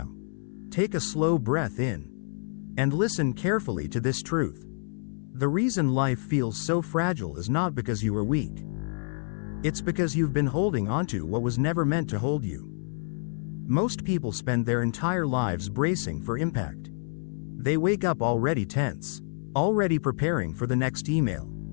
Take a slow breath in. And listen carefully to this truth. The reason life feels so fragile is not because you are weak. It's because you've been holding onto what was never meant to hold you. Most people spend their entire lives bracing for impact. They wake up already tense, already preparing for the next email,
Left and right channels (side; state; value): right; silent; 59 dB below the other